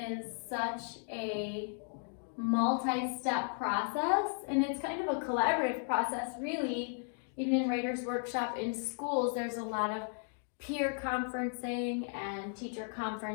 such a multi-step process, and it's kind of a collaborative process, really. Even in Writer's Workshop in schools, there's a lot of peer conferencing and teacher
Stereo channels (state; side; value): silent; right; 54 dB below the other